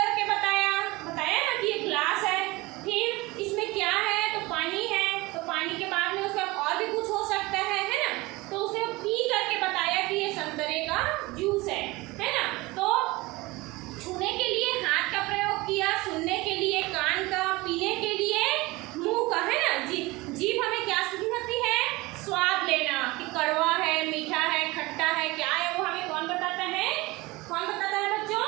बताया ना कि ये गिलास है। फिर इसमें क्या है? तो पानी है। तो पानी के बाद में उसका और भी कुछ हो सकता है ना। तो उसने पी करके बताया कि ये संतरे का जूस है ना। तो छूने के लिए हाथ का प्रयोग किया, सुनने के लिए कान का, पीने के लिए मुंह का, है ना। जीभ हमें क्या सिखाती है? स्वाद लेना, कि कड़वा है, मीठा है, खट्टा है, क्या है वो हमें कौन बताता है? कौन बताता है बच्चों?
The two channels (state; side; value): quieter; left; 21.9 dB